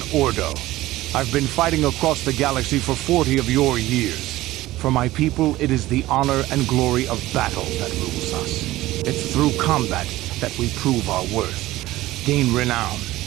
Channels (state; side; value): quieter; left; 16.9 dB